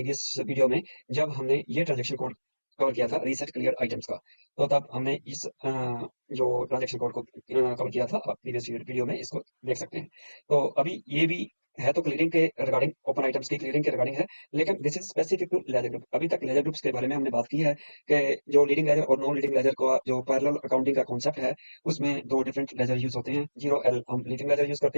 वीडियो में, जब हमने ये ट्रांजैक्शन कोड कवर किया था रीसेट क्लियर आइटम्स का। तो तब हमने इस जो ट्रांजैक्शन कोड को कवर किया था, आप प्रीवियस वीडियो में इसको देख सकते हैं। तो अभी ये भी है तो क्लियरिंग के रिगार्डिंग, ओपन आइटम्स की क्लियरिंग के रिगार्डिंग है, लेकिन this is specific to ledger group. अभी तक लेजर ग्रुप्स के बारे में हमने बात की है कि जो लीडिंग लेजर और नॉन लीडिंग लेजर का जो पैरेलल अकाउंटिंग का कॉन्सेप्ट है, उसमें दो डिफरेंट लेजर यूज होते हैं। 0L हम लीडिंग लेजर यूज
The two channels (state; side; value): inverted; both; correlation -1.00